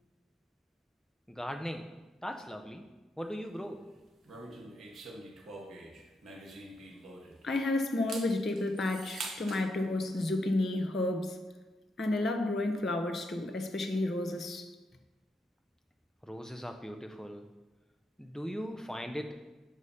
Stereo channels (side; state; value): both; normal; correlation 0.81